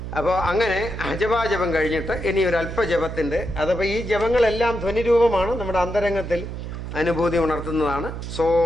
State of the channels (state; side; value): noise; right; hum, 7 dB below the sound